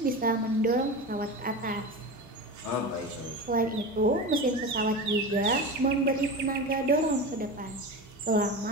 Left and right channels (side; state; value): both; normal; correlation 0.26